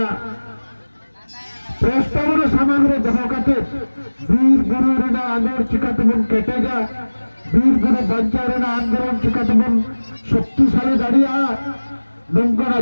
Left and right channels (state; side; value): inverted; both; correlation -1.00